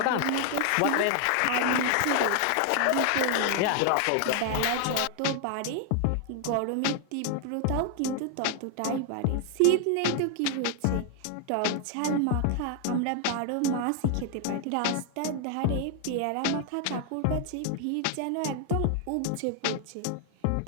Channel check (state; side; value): different; both; correlation 0.00